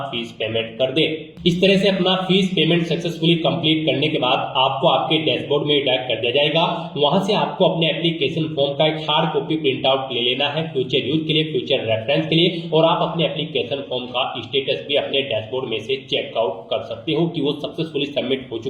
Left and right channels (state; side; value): identical; both; correlation 1.00